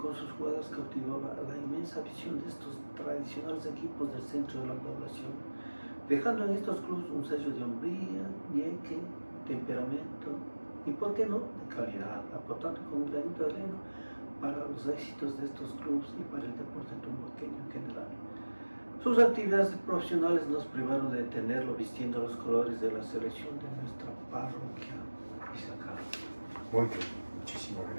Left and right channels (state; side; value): inverted; both; correlation -1.00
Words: sus jugadas cautivaba la inmensa visión de estos tradicionales equipos del centro de la población, dejando en estos clubes un sello de hombría, ñeque, temperamento y, por qué no, de calidad, aportando con un granito de arena para los éxitos de estos clubes y para el deporte tumbaqueño en general. Sus actividades profesionales nos privaron de tenerlo vistiendo los colores de la selección de nuestra parroquia. Y se acaba. Muy bien. Muchísimas